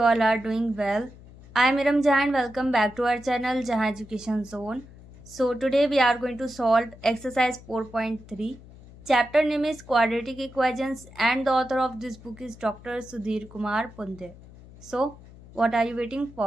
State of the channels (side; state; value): left; noise; hum, 20 dB below the sound